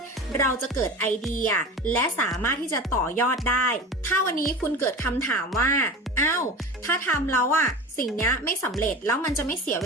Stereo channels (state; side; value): normal; both; correlation 0.32